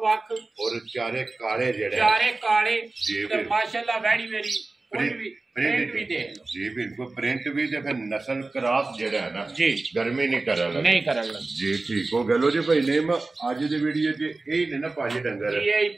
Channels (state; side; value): quieter; left; 3.4 dB